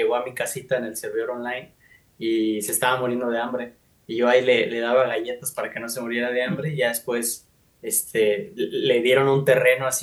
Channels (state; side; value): identical; both; correlation 1.00